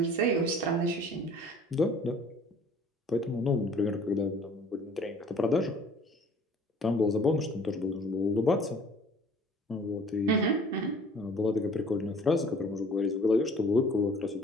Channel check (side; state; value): both; normal; correlation 0.52